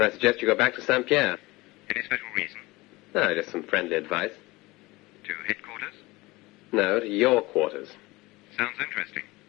I suggest you go back to St. Pierre. Any special reason? No, just some friendly advice. To headquarters? No, to your quarters. Sounds interesting.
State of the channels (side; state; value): right; quieter; 21.5 dB